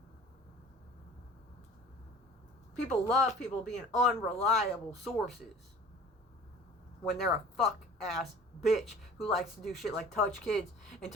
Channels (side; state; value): both; normal; correlation 0.44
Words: People love people being unreliable sources when they're a fuck ass bitch who likes to do shit like touch kids and